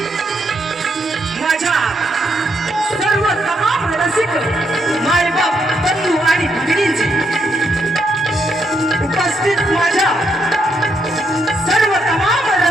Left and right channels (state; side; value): normal; both; correlation 0.77